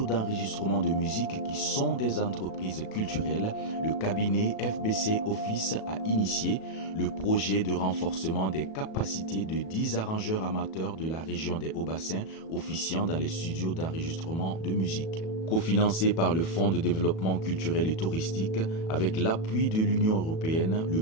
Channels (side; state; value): right; late; 37 ms